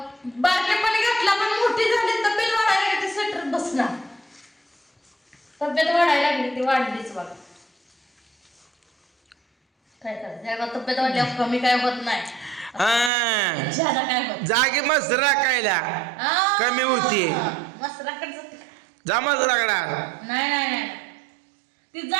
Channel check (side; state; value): left; drops out; at 13.1 s